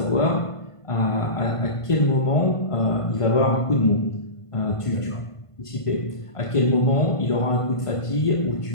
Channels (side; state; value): right; late; 1.5 ms